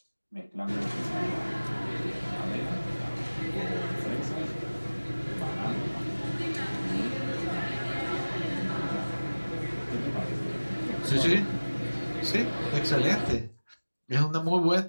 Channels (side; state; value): both; inverted; correlation -1.00